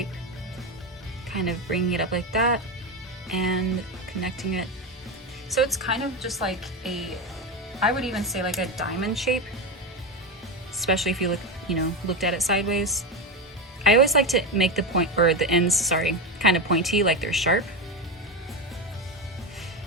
kind of bringing it up like that and connecting it. So it's kind of just like a, I would even say like a diamond shape, especially if you looked at it sideways. I always like to make the point, or the ends, sorry, kind of pointy, like they're sharp.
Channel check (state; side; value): normal; both; correlation 0.15